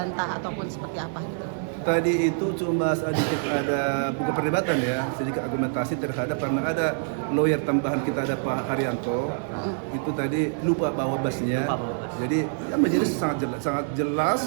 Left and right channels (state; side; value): silent; left; digital silence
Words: ataupun seperti apa gitu? Tadi itu cuma sedikit ada bukan perdebatan ya, sedikit argumentasi terhadap karena ada lawyer tambahan kita, ada Pak Haryanto. Itu tadi lupa bawa basnya. Jadi ya menjadi sangat jelas